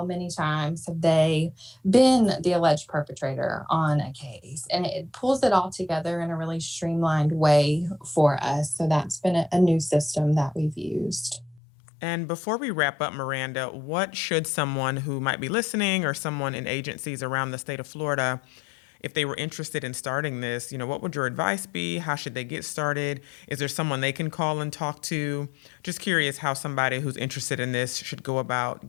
many times have they been the alleged perpetrator on a case? And it pulls it all together in a really streamlined way for us. So that's been a new system that we've used. And before we wrap up, Miranda, what should someone who might be listening or someone in agencies around the state of Florida if they were interested in starting this, what would your advice be? How should they get started? Is there someone they can call and talk to? Just curious how somebody who's interested in this should go about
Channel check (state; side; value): drops out; right; at 11.6 s